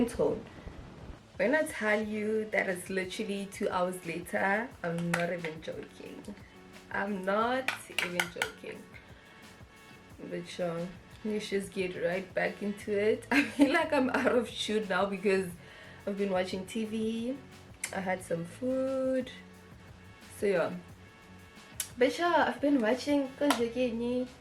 tone. When I tell you that it's literally 2 hours later, I'm not even joking. I'm not even joking. But sure, let's just get right back into it. I feel like I'm out of shoot now because I've been watching TV, I had some food, so yeah. But yeah, I've been watching Concealing,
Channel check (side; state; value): both; identical; correlation 1.00